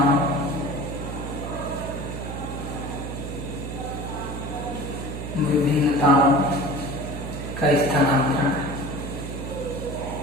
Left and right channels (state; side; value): noise; right; hum, 6 dB below the sound